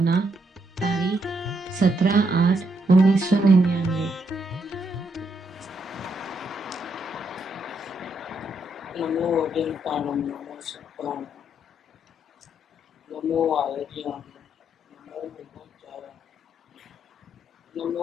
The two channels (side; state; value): both; normal; correlation 0.77